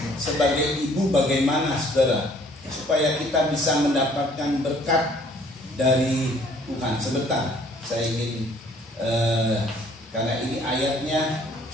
sebagai ibu bagaimana, saudara. Supaya kita bisa mendapatkan berkat dari Tuhan. Sebentar, saya ingin karena ini ayatnya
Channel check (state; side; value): normal; both; correlation 0.58